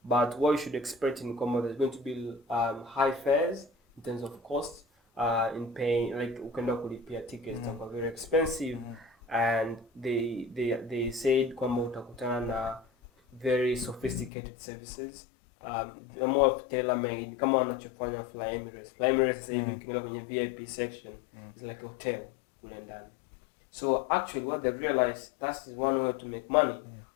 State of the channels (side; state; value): right; drops out; at 14.3 s